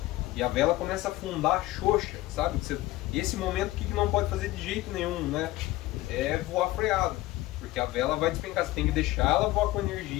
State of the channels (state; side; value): quieter; right; 17.6 dB